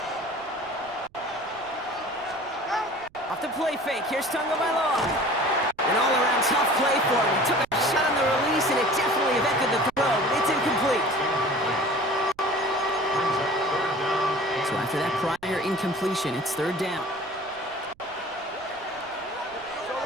Off the play fake, here's Tagovailoa. An all-around tough play for him. He took a shot on the release, and it definitely affected the throw. It's incomplete. So after that prior incompletion, it's third down.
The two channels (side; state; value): right; noise; rumble, 29 dB below the sound